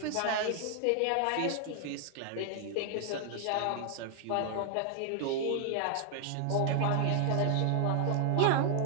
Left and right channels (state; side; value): different; both; correlation 0.00